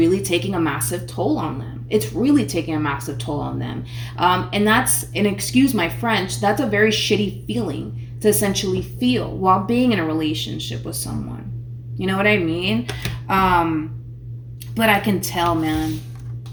taking a massive toll on them. It's really taking a massive toll on them. And that's, and excuse my French, that's a very shitty feeling to essentially feel while being in a relationship with someone. You know what I mean? But I can tell, man.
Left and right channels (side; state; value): both; identical; correlation 1.00